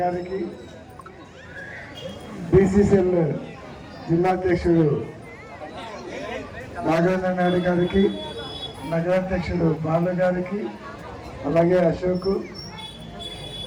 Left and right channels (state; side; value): identical; both; correlation 1.00